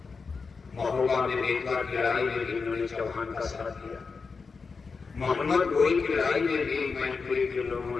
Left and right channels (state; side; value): quieter; right; 4.9 dB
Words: महोबा में बेतवा की लड़ाई में भी उन्होंने चौहान का साथ दिया। मोहम्मद गोरी की लड़ाई में भी मैनपुरी के लोगों